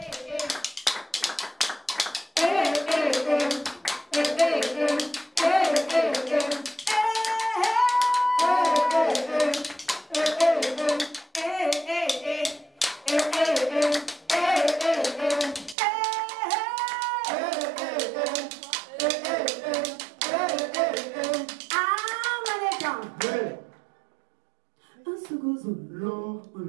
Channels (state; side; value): drops out; left; at 15.8 s